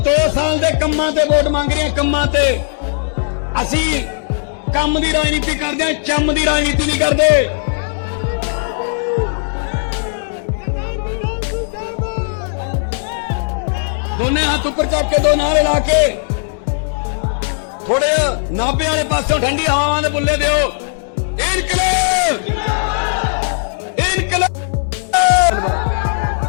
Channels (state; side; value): silent; right; digital silence